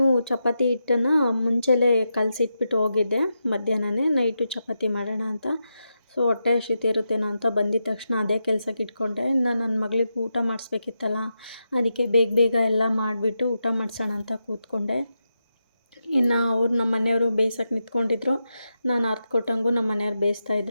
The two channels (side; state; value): both; inverted; correlation -0.87